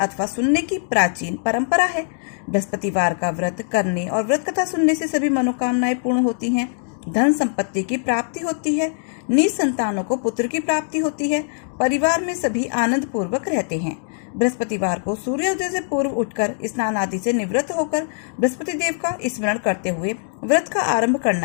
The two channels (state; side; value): silent; right; digital silence